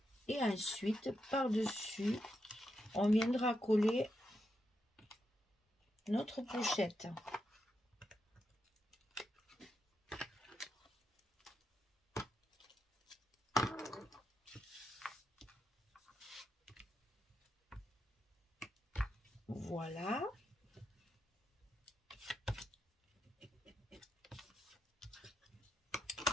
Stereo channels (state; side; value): normal; both; correlation 0.85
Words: et ensuite par-dessus on viendra coller notre pochette. Voilà.